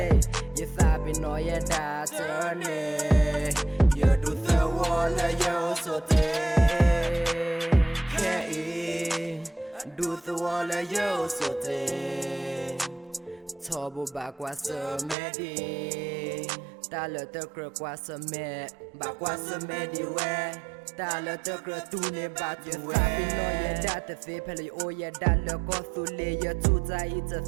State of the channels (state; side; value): drops out; left; at 15.2 s